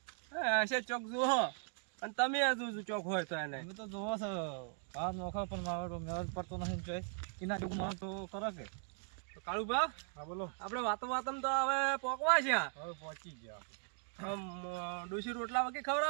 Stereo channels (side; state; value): left; silent; 52 dB below the other